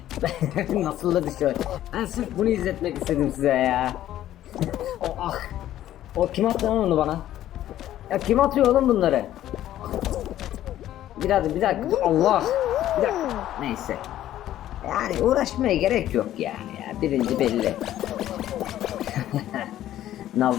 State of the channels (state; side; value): quieter; right; 12.8 dB